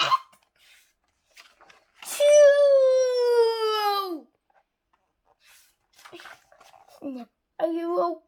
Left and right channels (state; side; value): identical; both; correlation 1.00